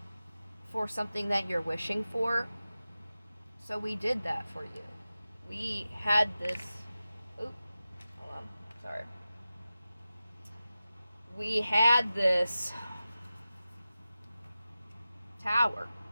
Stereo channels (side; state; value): both; inverted; correlation -0.94